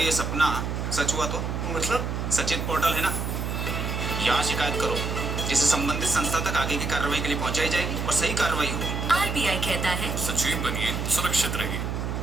ये सपना सच हुआ तो? मतलब? सचेत पोर्टल है ना, यहाँ शिकायत करो, जिसे संबंधित संस्था तक आगे की कार्रवाई के लिए पहुंचाई जाएगी और सही कार्रवाई होगी। आरबीआई कहता है सचेत बनिए, सुरक्षित रहिए।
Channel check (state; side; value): noise; right; hum, 3 dB below the sound